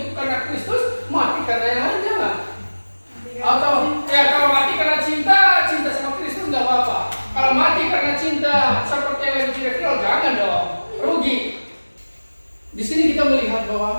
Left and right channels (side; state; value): both; inverted; correlation -1.00